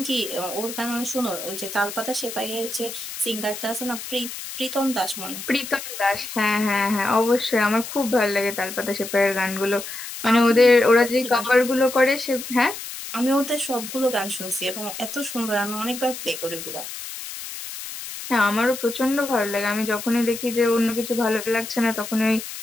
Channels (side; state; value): left; noise; hiss, 9 dB below the sound